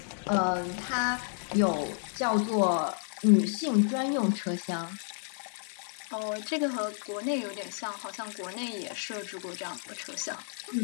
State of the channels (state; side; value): silent; right; digital silence